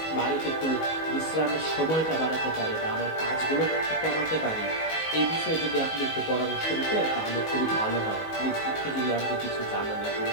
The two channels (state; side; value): late; right; 19 ms